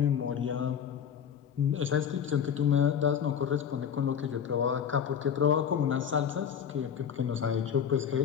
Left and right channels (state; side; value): quieter; right; 8.1 dB